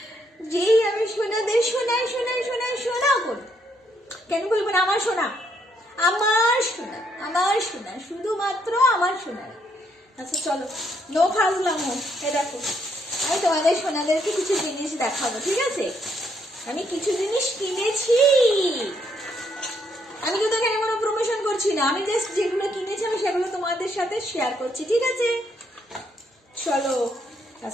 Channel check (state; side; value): normal; both; correlation 0.73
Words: যেই আমি সোনাদের শোনাই শোনাই শোনাই শোনা করি। কেন বলবো না আমার সোনা, আমার সোনা, আমার সোনা, শুধুমাত্র আমার সোনা। আচ্ছা চলো, নো ফাজলাম। এ দেখো, আমি তোমাদের সোনাদেরকে কিছু জিনিস দেখাবো, ঠিক আছে? আমি কিছু জিনিস কিনেছি, আমি কিন্তু এখানে কোনো প্রমোশন করছি না, আমি জাস্ট যেগুলো কিনেছি আমি সেগুলো তোমাদের সাথে শেয়ার করছি, ঠিক আছে? চলো।